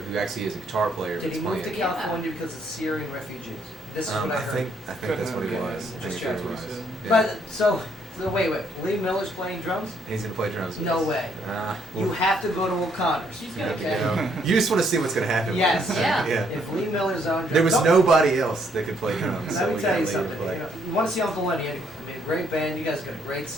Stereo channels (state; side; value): normal; both; correlation 0.69